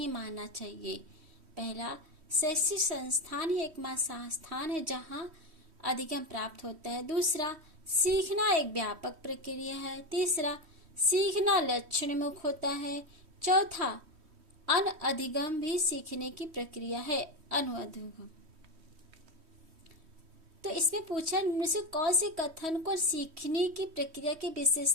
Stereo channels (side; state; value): left; late; 3.1 ms